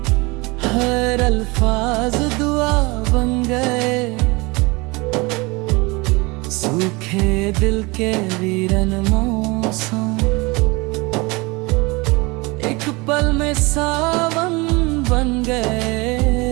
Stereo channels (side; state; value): left; quieter; 25.4 dB